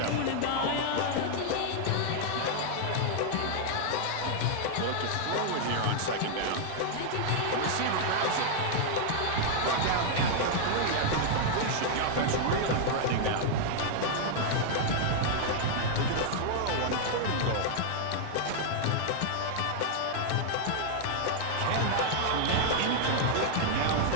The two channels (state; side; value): different; both; correlation 0.00